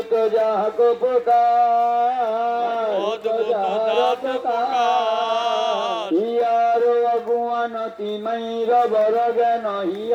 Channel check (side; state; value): both; identical; correlation 1.00